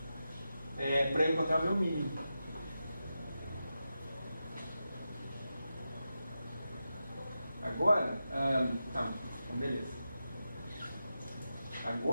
para eu encontrar o meu mínimo. Agora, então beleza.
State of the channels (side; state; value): both; inverted; correlation -0.90